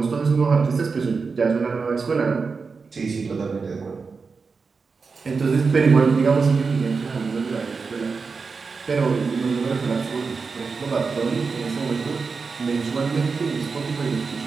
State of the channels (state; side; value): quieter; left; 4.8 dB